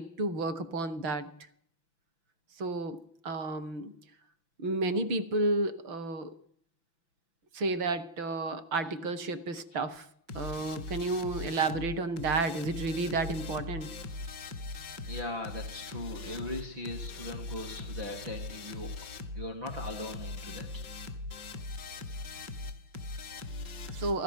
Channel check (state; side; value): late; left; 6.0 ms